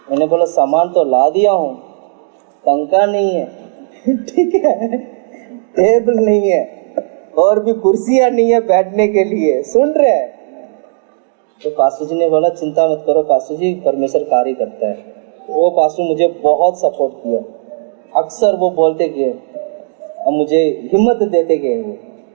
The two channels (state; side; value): silent; left; digital silence